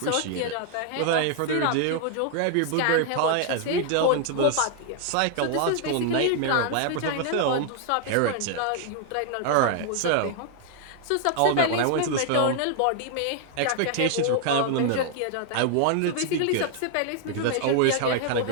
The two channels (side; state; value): both; different; correlation 0.00